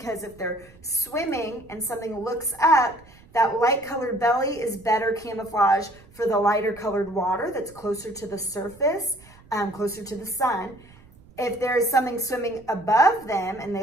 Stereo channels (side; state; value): right; noise; rumble, 25 dB below the sound